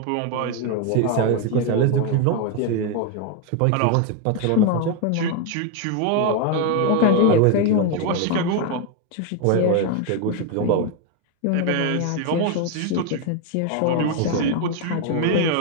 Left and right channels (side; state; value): both; different; correlation 0.01